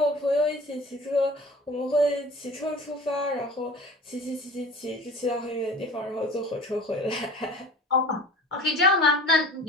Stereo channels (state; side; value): normal; both; correlation 0.41